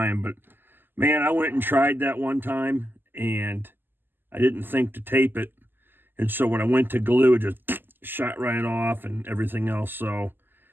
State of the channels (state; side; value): late; left; 0.095 ms